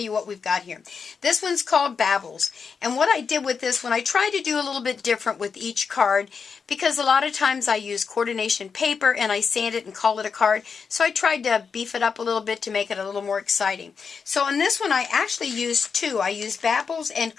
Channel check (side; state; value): right; quieter; 5.8 dB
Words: what we've got here. This one's called Baubles. And what I did with this one, I tried to do a little bit different with each card because a lot of times I use coordination paper and I sand it and call it a card. So I tried to beef it up a little bit to make it a little more exciting. So on this one, I actually used two. I used Baubles and